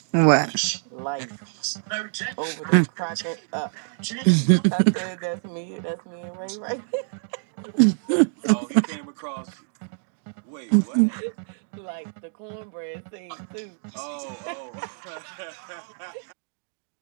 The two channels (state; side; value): silent; left; digital silence